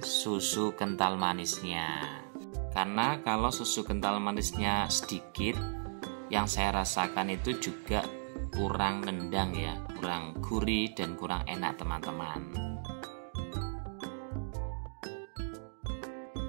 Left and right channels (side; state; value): left; silent; digital silence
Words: kental manisnya. Karena kalau susu kental manisnya sedikit, yang saya rasakan itu juga kurang nendang ya, kurang gurih dan kurang enak teman-teman.